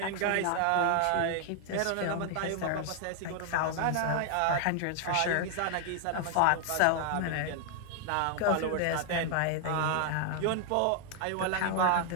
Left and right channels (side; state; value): both; different; correlation 0.00